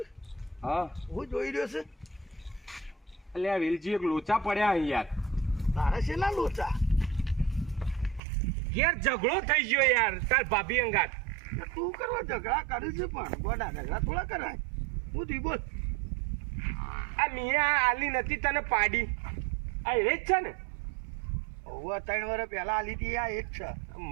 હા હું જોઈ રહ્યો છે. અલ્યા વેલજી એક લોચા પડ્યા અહીં યાર. તારે છે ના લોચા યાર ઝઘડો થઈ ગયો યાર તાર ભાભી અંગાત. તું કરવા ઝઘડા કરે છે પણ ગોડા ઝઘડા થોડા કરાય. હું તી બોલ. આ મિયા આલી નથી તને પાડી આ એ જ છે ને. હવે 3 વર્ષ પહેલા આલી હતી આ એ જ છે.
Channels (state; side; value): drops out; left; at 8.2 s